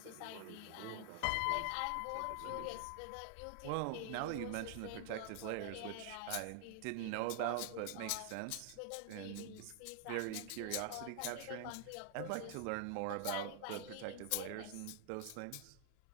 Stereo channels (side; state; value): both; different; correlation 0.00